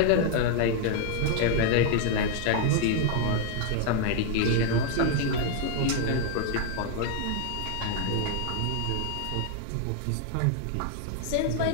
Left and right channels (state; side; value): different; both; correlation 0.00